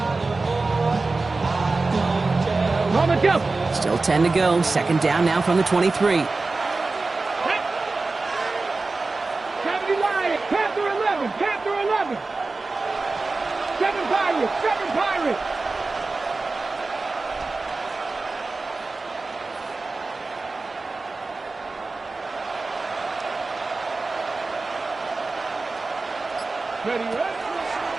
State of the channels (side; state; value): left; quieter; 3.6 dB